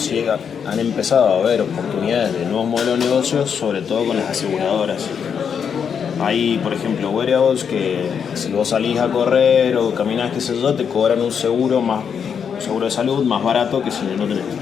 han empezado a haber oportunidades de nuevos modelos de negocios, sobre todo con las aseguradoras. Hay, por ejemplo, wearables que si vos salís a correr o caminás, qué sé yo, te cobran un seguro de salud más barato que si no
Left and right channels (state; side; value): quieter; right; 7.2 dB